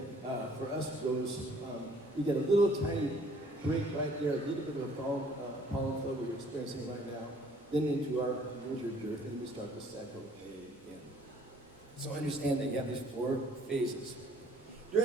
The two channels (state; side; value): normal; both; correlation 0.59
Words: for us, goes, we get a little tiny break right there, a little bit of a pollen flow we're experiencing right now, then into our winter dearth, and we start the cycle again. So understand that you have these 4 phases.